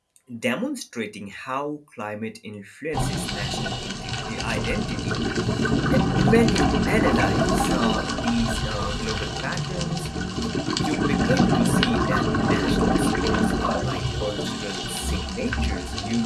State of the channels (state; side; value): identical; both; correlation 1.00